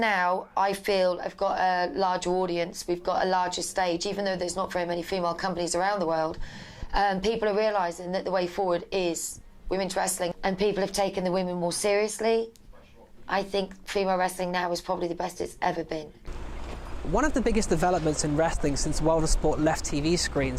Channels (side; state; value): both; identical; correlation 1.00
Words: I feel, have got a larger audience. We've got a larger stage, even though there's not very many female companies around the world. People are realising that the way forward is women's wrestling, and people have taken the women more seriously. I think female wrestling now is probably the best it's ever been. One of the biggest developments in wrestling since World of Sport left TV